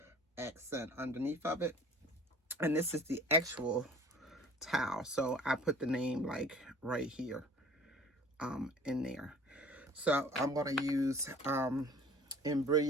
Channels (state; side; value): normal; both; correlation 0.47